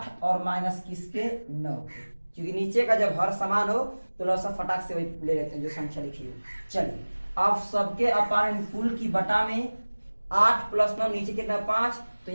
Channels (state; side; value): inverted; both; correlation -1.00